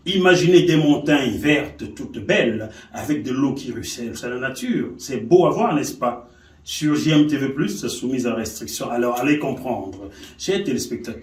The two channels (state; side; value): identical; both; correlation 1.00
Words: Imaginez des montagnes vertes, toutes belles, avec de l'eau qui ruisselle. C'est la nature. C'est beau à voir, n'est-ce pas? Sur JMTV+, c'est soumis à restriction. Alors, allez comprendre. Chers